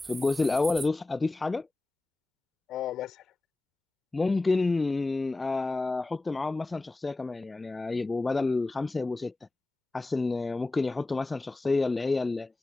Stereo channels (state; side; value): quieter; right; 3.1 dB